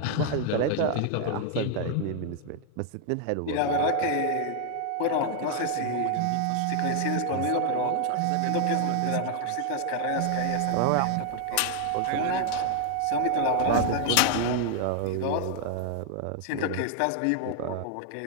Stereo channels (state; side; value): different; both; correlation 0.00